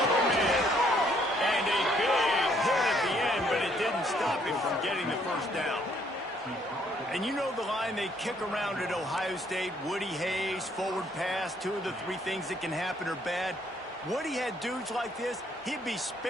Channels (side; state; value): both; normal; correlation 0.67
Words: open man. And a big hit at the end, but it didn't stop him from getting the 1st down. And you know the line they kick around at Ohio State, Woody Hayes, forward pass, 2 of the 3 things that can happen are bad. Woody had dudes like this, he'd be